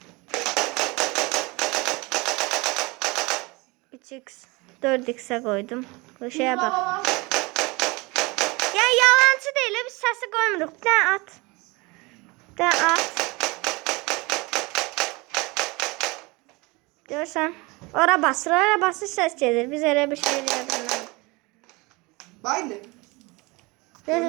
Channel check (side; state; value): left; quieter; 25.1 dB